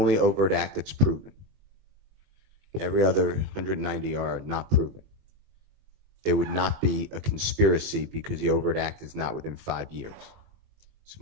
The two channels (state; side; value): late; left; 21 ms